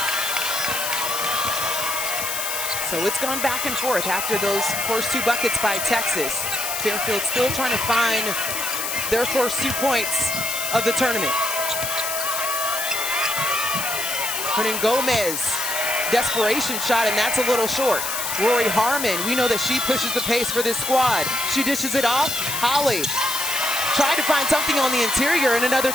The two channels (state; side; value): noise; left; hiss, 3 dB below the sound